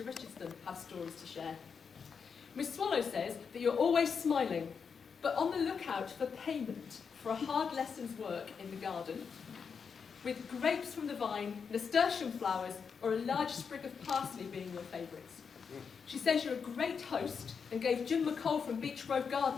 Richardson have stories to share. Miss Swallow says that you're always smiling, but on the lookout for payment for a hard lesson's work in the garden, with grapes from the vine, nasturtium flowers, or a large sprig of parsley being your favourites. She says you're a great host and gave Jim McCall from Beach Grove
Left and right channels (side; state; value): right; quieter; 6.1 dB